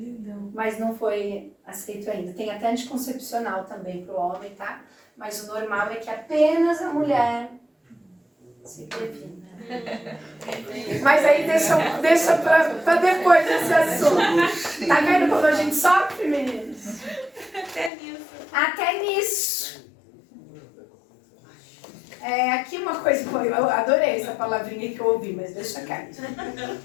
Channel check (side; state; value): right; drops out; at 17.9 s